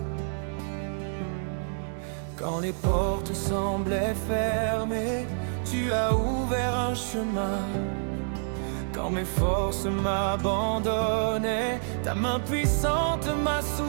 Quand les portes semblaient fermées, tu as ouvert un chemin. Quand mes forces m'abandonnaient, ta main puissante m'a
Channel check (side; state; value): left; silent; digital silence